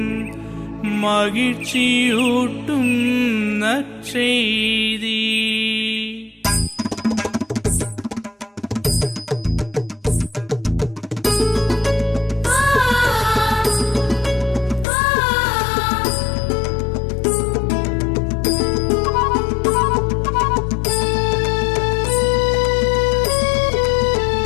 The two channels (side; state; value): right; drops out; at 14.9 s